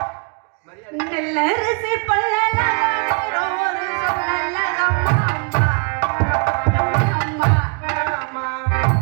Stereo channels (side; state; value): left; quieter; 37.6 dB